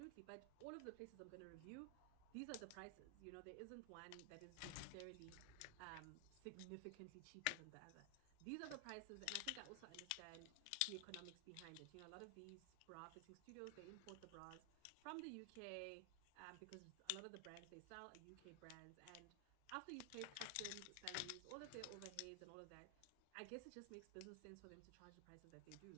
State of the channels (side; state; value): both; different; correlation 0.00